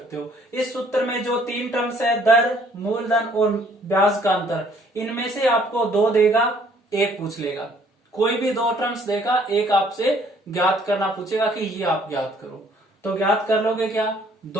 हो। इस सूत्र में जो 3 टर्म्स है, दर, मूलधन और ब्याज का अंतर, इनमें से आपको 2 देगा, 1 पूछ लेगा। कोई भी 2 टर्म्स देगा, 1 आपसे ज्ञात करना पूछेगा कि ये आप ज्ञात करो, तो ज्ञात कर लोगे क्या,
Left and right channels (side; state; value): both; normal; correlation 0.61